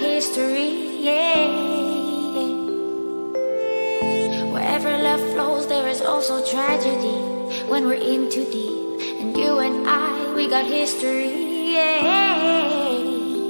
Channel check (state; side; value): inverted; both; correlation -1.00